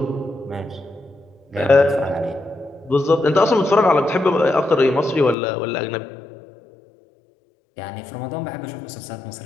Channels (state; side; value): drops out; right; at 5.4 s